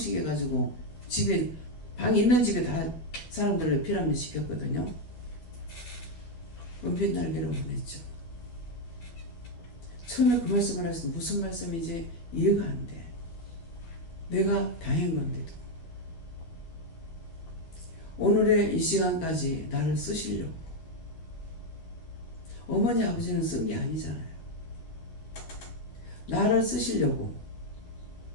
집에 방 있는 집에 다 사람들을 피라미드 시켰거든요. 은빛 날개로 보냈죠. 처음에 그 말씀을 했을 때 무슨 말씀인지 이해가 안 돼. 내가 당한 건데도. 오늘의 이 시간까지 나를 쓰시려고. 어머니 아버지는 쓴 게 아니잖아요. 나를 쓰시려고.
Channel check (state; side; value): late; right; 12 ms